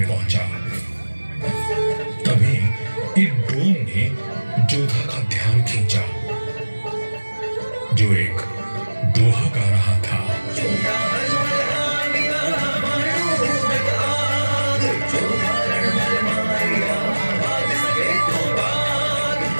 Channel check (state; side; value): inverted; both; correlation -1.00